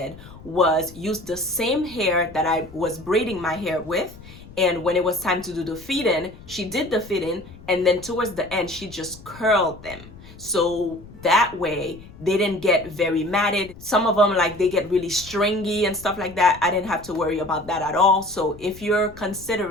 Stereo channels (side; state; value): left; noise; rumble, 19 dB below the sound